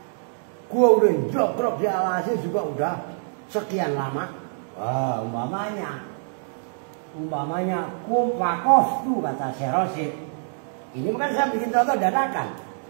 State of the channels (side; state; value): left; silent; 62 dB below the other